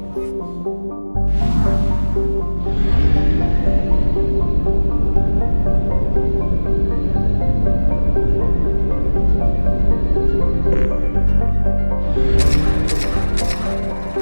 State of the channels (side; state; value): both; inverted; correlation -1.00